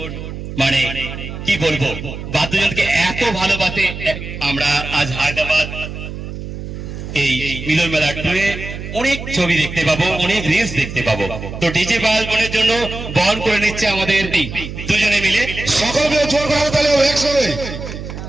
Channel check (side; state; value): right; noise; hum, 9 dB below the sound